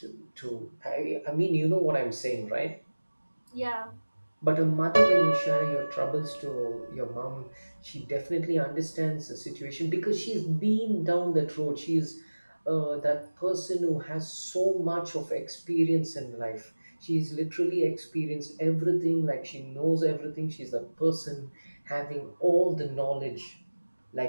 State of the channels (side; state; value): both; inverted; correlation -1.00